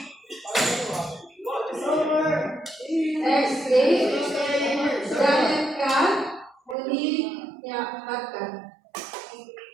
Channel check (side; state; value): left; drops out; at 6.8 s